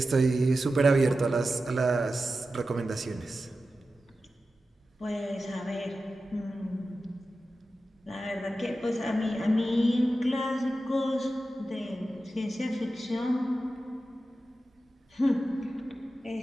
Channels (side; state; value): both; normal; correlation 0.93